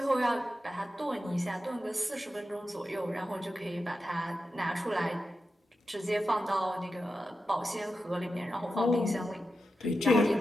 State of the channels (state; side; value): normal; both; correlation 0.90